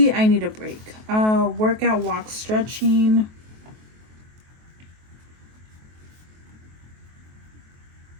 I need a break. Workout, walk, stretching.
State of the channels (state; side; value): late; left; 23 ms